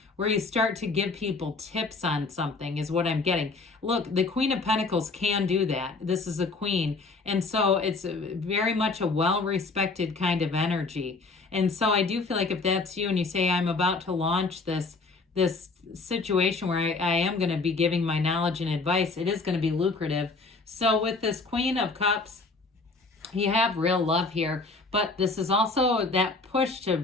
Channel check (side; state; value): right; quieter; 3.8 dB